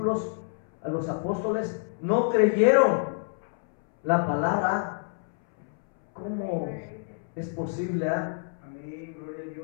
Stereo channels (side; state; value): right; silent; 60 dB below the other